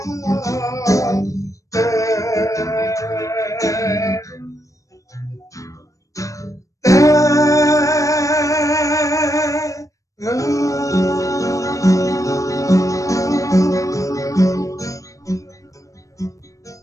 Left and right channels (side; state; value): right; late; 0.16 ms